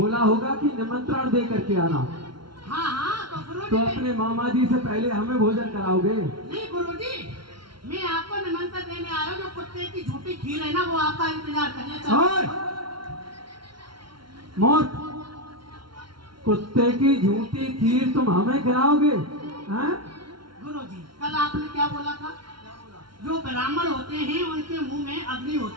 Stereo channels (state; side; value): late; left; 0.73 ms